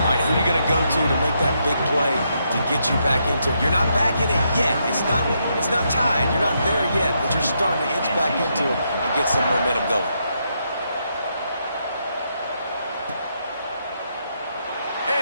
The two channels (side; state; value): both; inverted; correlation -0.79